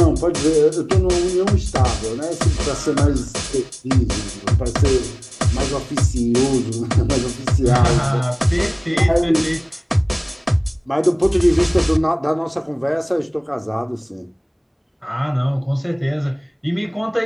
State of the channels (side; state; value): both; identical; correlation 1.00